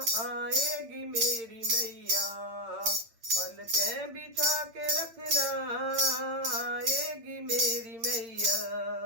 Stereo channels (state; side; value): late; left; 8.9 ms